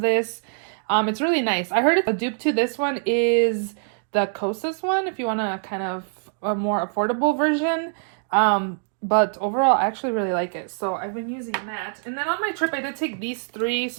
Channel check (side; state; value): left; silent; digital silence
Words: It's really nice. I heard a dupe to this one is the Kosas one, if you want a kind of a more affordable version. But overall, I actually really like it. So I've been using that. And then on my trip, I did take these 3